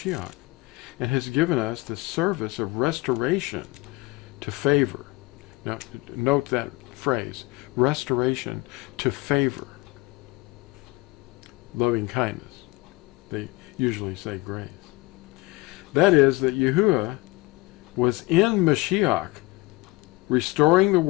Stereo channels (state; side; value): quieter; right; 22.2 dB